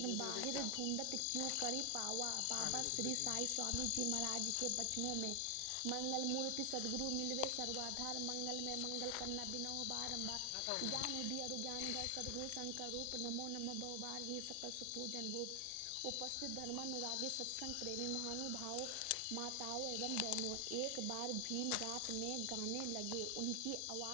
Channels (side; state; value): both; different; correlation 0.00